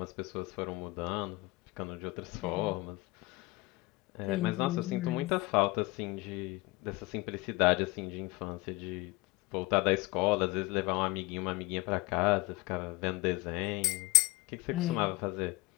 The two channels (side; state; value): right; quieter; 22.2 dB